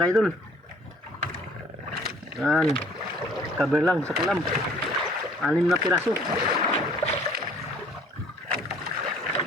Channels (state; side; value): normal; both; correlation 0.56